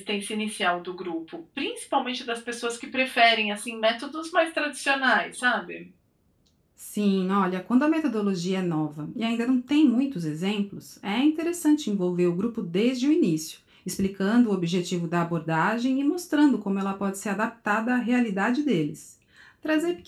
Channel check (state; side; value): identical; both; correlation 1.00